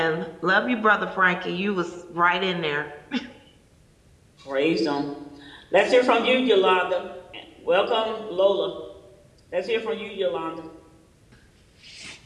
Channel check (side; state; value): both; identical; correlation 1.00